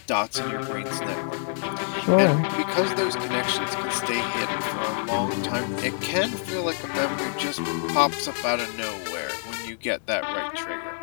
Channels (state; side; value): silent; right; 61 dB below the other